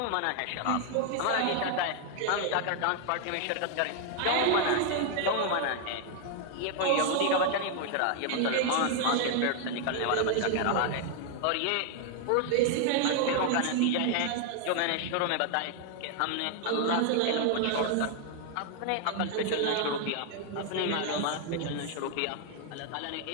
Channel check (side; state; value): both; different; correlation 0.00